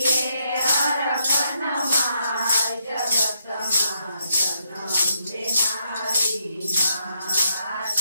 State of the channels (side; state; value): both; inverted; correlation -0.78